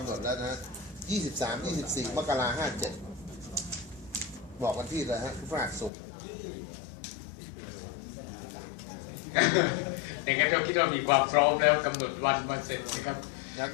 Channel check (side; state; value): right; drops out; at 5.9 s